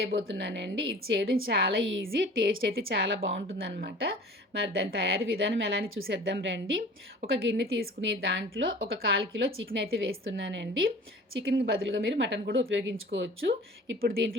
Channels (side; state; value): both; normal; correlation 0.44